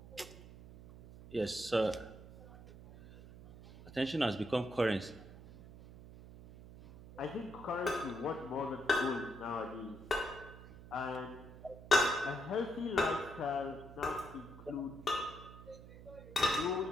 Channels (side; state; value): right; noise; hum, 16 dB below the sound